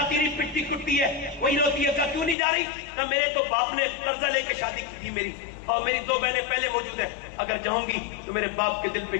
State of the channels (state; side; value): drops out; right; at 2.4 s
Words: نہیں، پٹتی کٹتی ہے، وہی روتی ہے. کیوں نہیں جا رہی؟ کہ میرے تو باپ نے قرضہ لے کے شادی کی تھی میری، اور میری 2 بہنیں پہلے موجود ہیں. اگر جاؤں گی تو میرے باپ کے دل پہ